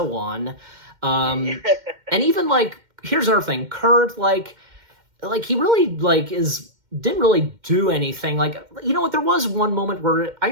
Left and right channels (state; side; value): late; left; 2.1 ms